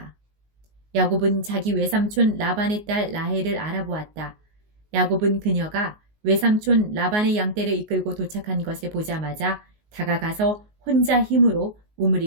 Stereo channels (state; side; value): late; left; 19 ms